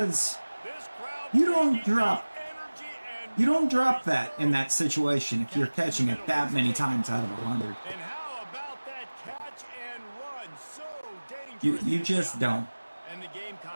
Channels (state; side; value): inverted; both; correlation -1.00